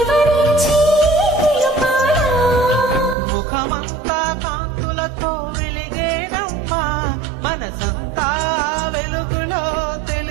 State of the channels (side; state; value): left; drops out; at 3.2 s